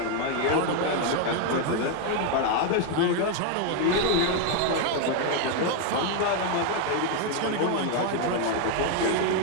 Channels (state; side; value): different; both; correlation 0.01